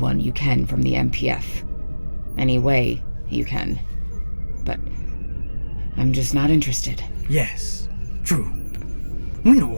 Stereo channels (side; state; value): both; inverted; correlation -1.00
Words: you can from the MPF. Any way you can. But I'm just not interested. Yes, true. We know